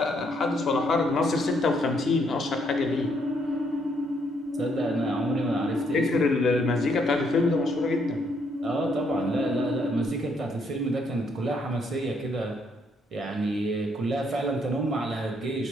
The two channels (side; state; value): both; normal; correlation 0.71